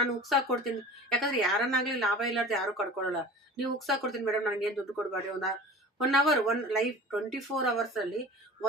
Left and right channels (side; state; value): both; normal; correlation 0.39